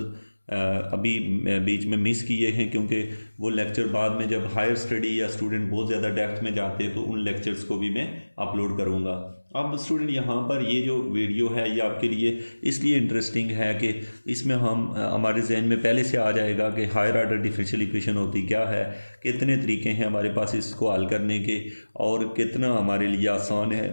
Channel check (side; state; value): both; inverted; correlation -1.00